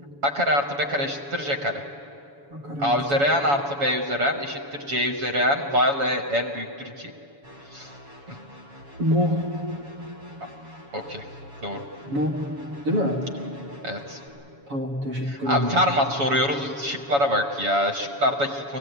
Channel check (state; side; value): late; left; 7.1 ms